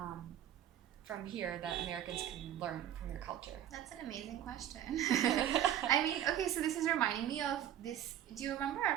here that Americans can learn from your culture. That's an amazing question. I mean, okay, so this is reminding me of this. Do you remember our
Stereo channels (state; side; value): quieter; left; 11.0 dB